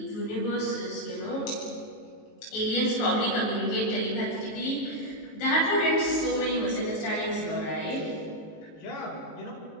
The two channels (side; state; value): right; late; 18 ms